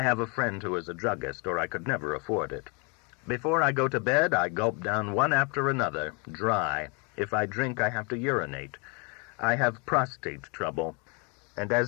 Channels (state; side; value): quieter; right; 32.9 dB